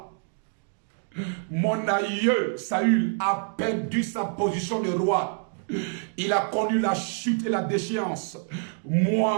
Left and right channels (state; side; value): silent; left; 60 dB below the other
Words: Mon aïeux, Saül, a perdu sa position de roi. Il a connu la chute et la déchéance.